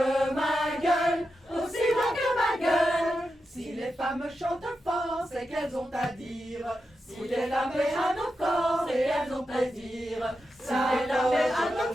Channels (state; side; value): normal; both; correlation 0.89